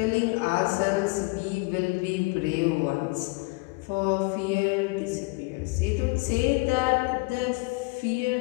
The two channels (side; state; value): right; quieter; 27.8 dB